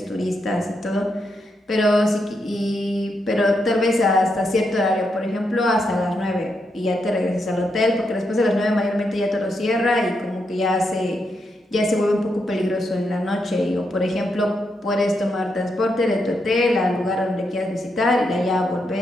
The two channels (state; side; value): normal; both; correlation 0.82